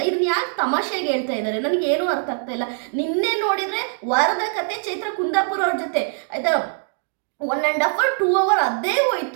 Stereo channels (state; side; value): silent; left; 64 dB below the other